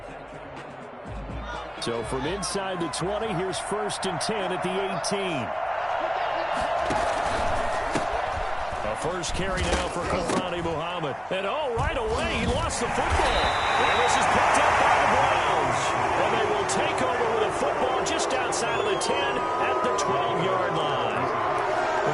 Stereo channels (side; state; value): both; identical; correlation 1.00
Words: So from inside the 20, here's 1st and 10 at the 18. First carry now for Kofrani Muhammad. And right away, he lost the football. And this is picked up by the Browns. And they will take over with a football just outside of the 10 at the 12-yard line.